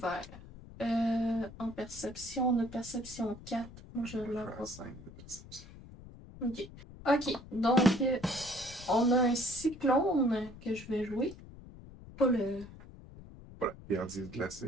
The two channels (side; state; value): left; noise; rumble, 17 dB below the sound